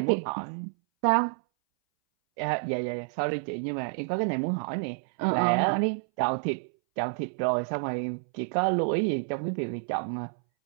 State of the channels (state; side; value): silent; left; 59 dB below the other